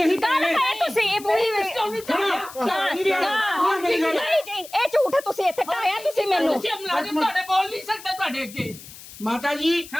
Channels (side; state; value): left; noise; hiss, 17 dB below the sound